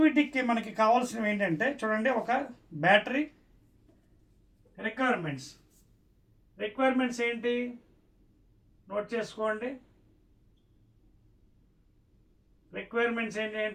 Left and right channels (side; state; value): both; identical; correlation 1.00